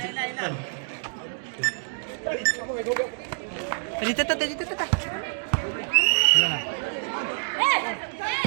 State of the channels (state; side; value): silent; left; digital silence